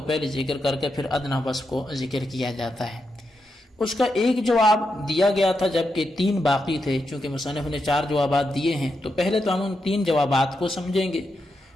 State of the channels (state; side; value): normal; both; correlation 0.85